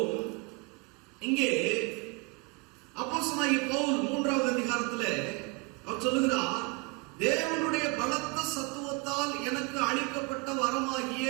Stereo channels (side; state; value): left; quieter; 27.1 dB